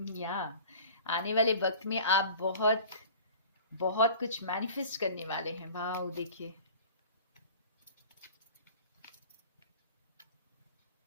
आने वाले वक्त में आप बहुत बहुत कुछ मैनिफेस्ट करने वाले हैं। वाह, देखिए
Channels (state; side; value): inverted; both; correlation -0.42